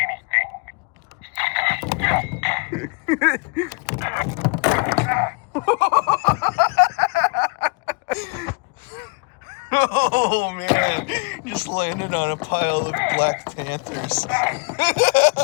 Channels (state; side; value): quieter; right; 33.0 dB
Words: anything. oh man, just landed on a pile of Black Panthers.